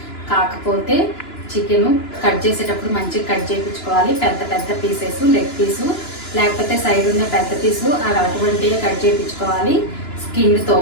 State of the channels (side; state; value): right; late; 2.9 ms